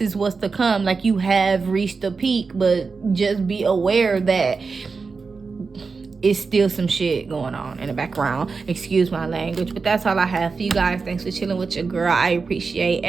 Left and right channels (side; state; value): left; quieter; 4.7 dB